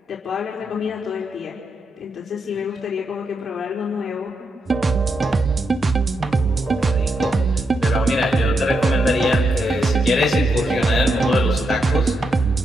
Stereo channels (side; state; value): both; normal; correlation 0.82